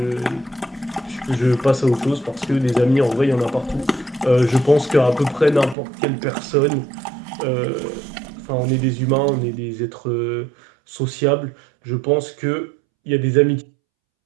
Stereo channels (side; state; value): left; drops out; at 5.8 s